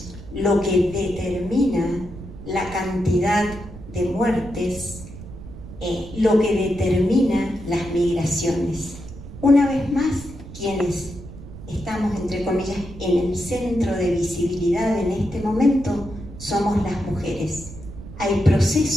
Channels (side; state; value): right; noise; rumble, 14 dB below the sound